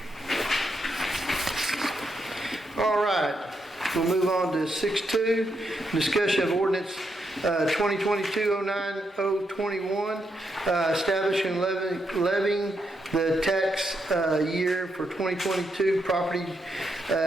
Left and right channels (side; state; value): both; normal; correlation 0.81